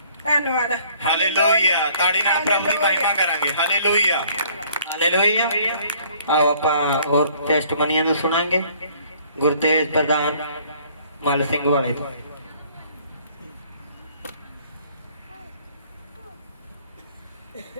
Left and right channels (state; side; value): inverted; both; correlation -0.59